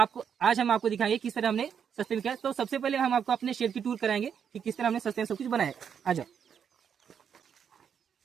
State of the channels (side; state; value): left; quieter; 7.7 dB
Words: आज हम आपको दिखाएंगे किस तरह हमने सस्ते में किया। तो सबसे पहले हम आपको अपने शेड की टूर कराएंगे कि किस तरह हमने सस्ते में सब कुछ बनाया। आ जाओ,